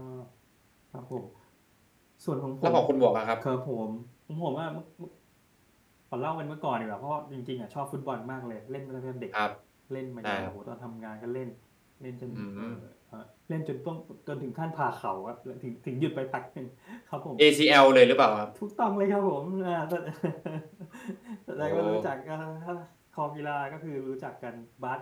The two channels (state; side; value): identical; both; correlation 1.00